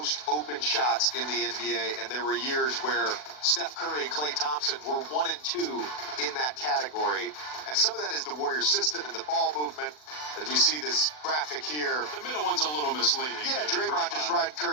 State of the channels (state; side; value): late; right; 40 ms